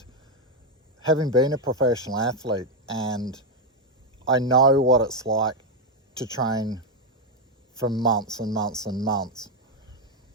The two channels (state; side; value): normal; both; correlation 0.03